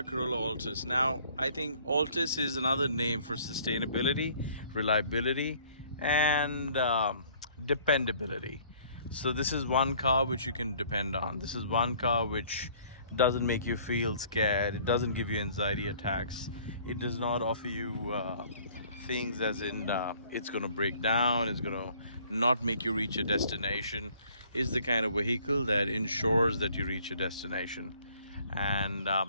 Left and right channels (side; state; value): both; inverted; correlation -0.57